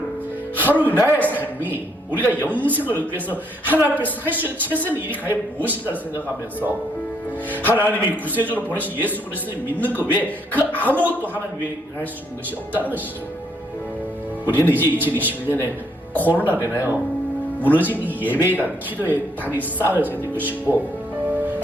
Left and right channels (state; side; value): normal; both; correlation 0.71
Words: 하루 나의 삶이 우리가 영생을 얻기 위해서 하나님 앞에서 할 수 있는 최선의 일이 과연 무엇인가를 생각하면서 하나님이 구세주로 보내신 예수 그리스도를 믿는 것 외에 그 아무것도 하나님 외에 할 수 있는 것이 없다는 것이죠. 우리는 이제 2021년에 코로나로 인하여 무너진 이 예배의 단, 기도의 단이 쌓여져야 될 것이고